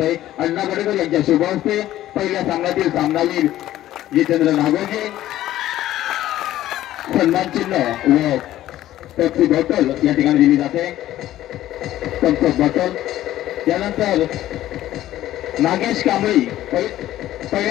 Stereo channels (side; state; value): right; quieter; 13.8 dB